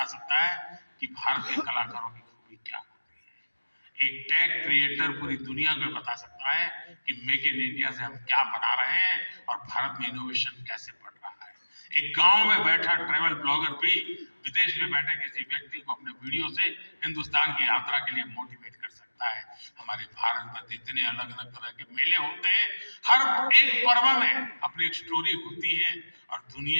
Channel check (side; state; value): both; inverted; correlation -1.00